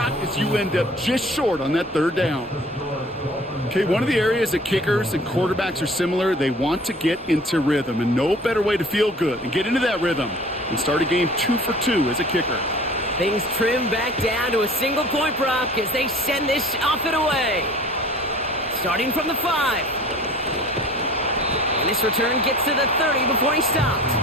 as you end up just short on that third down? Okay, one of the areas that kickers and quarterbacks are similar, they want to get into rhythm, and no better way to feel good and get into that rhythm and start a game 2 for 2 as a kicker. Things trim back down to a single point, Brock, as they send this off and away. Starting from the 5. And this return gets to the 30 before he stopped.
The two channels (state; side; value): normal; both; correlation 0.46